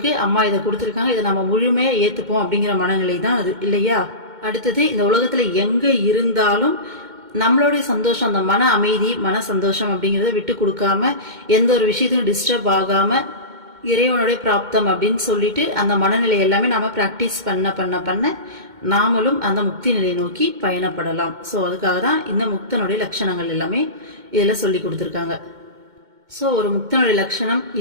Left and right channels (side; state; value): left; late; 2.2 ms